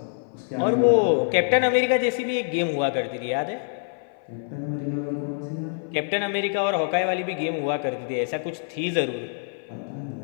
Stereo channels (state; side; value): silent; right; 59 dB below the other